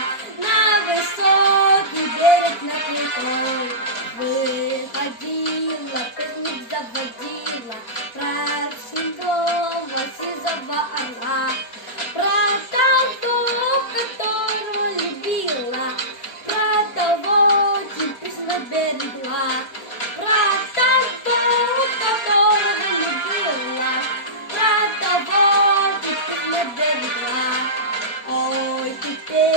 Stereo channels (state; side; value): late; right; 4.3 ms